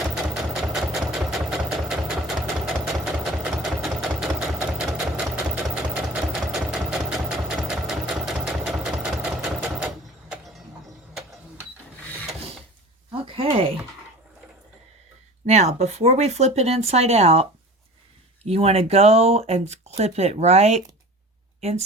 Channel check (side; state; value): both; normal; correlation 0.39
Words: Okay. Now, before we flip it inside out, you want to go and clip it right